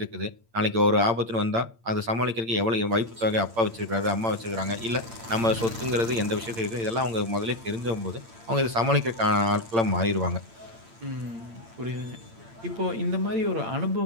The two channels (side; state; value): left; late; 8.8 ms